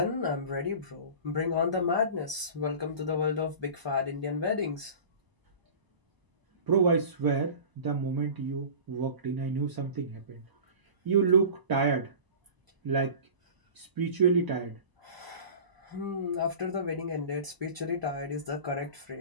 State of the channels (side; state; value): left; late; 1.0 ms